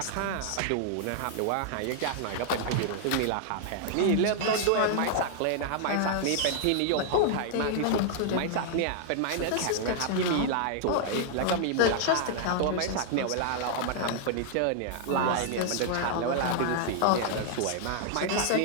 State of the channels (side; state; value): both; different; correlation -0.01